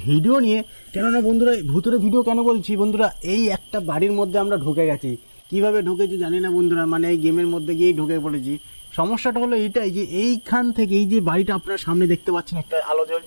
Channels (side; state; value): both; inverted; correlation -1.00